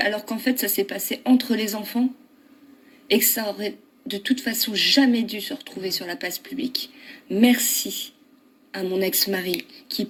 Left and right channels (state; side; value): identical; both; correlation 1.00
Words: qu'en fait, ça s'est passé entre les enfants et que ça aurait de toute façon jamais dû se retrouver sur la place publique. Merci à mon ex-mari, qui